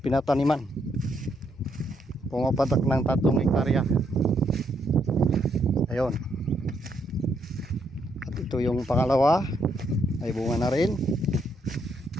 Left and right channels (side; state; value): both; normal; correlation 0.74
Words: pinataniman. Pumapatak ng 3 hektarya. Ayun. At ito yung pangalawa, ay bunga na rin.